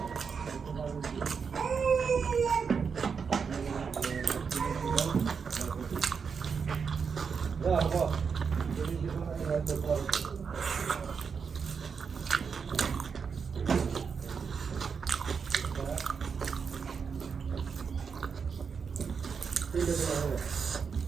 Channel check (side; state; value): left; quieter; 6.0 dB